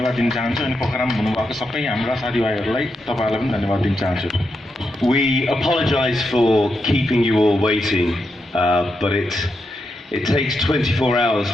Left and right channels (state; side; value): normal; both; correlation 0.84